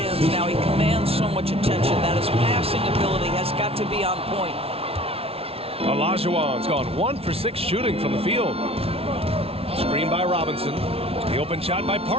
now he commands so much attention that his passing ability has got to be on point. Olajuwon's gone 1 for 6 shooting from the field. Screen by Robinson. The open shot by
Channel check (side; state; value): left; late; 0.28 ms